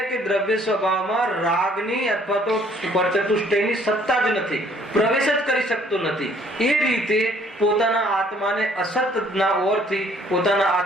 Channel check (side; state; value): both; normal; correlation 0.61